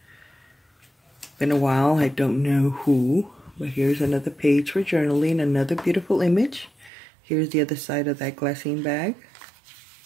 Been a while, I don't know who. But here's another page for journaling, another beautiful image. Here's the other side of that glassine bag.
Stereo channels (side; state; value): left; drops out; at 6.9 s